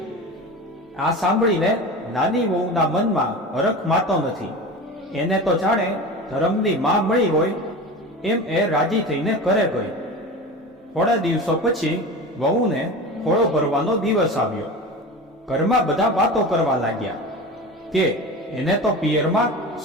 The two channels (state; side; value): normal; both; correlation 0.31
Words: આ સાંભળીને નાની વહુના મનમાં હરખ માતો નથી. એને તો જાણે ધર્મની માં મળી હોય એમ એ રાજી થઈને ઘરે ગઈ. થોડા દિવસો પછી વહુને ખોળો ભરવાનો દિવસ આવ્યો. ઘરમાં બધા વાતો કરવા લાગ્યા કે એને તો પિયરમાં